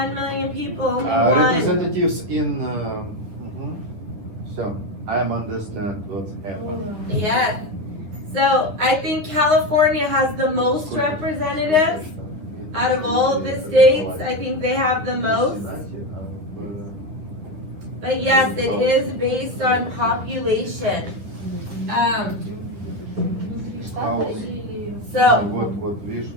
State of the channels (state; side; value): late; left; 10 ms